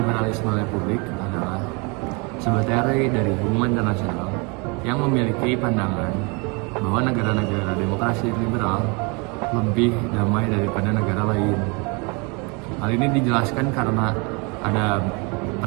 republik adalah sebuah teori dari hubungan internasional yang memiliki pandangan bahwa negara-negara demokrasi liberal lebih damai daripada negara lain. Hal ini dijelaskan karena ada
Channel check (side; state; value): left; quieter; 30.6 dB